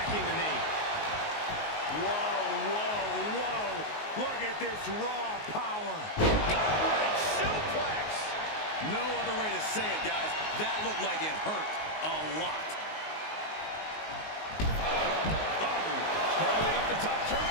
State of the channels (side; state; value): right; late; 19 ms